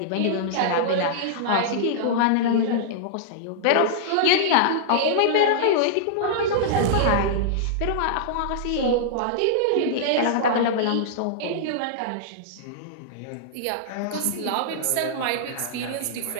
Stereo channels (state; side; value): different; both; correlation -0.02